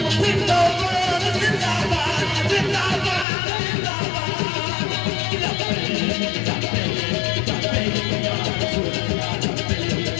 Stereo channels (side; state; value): right; drops out; at 3.2 s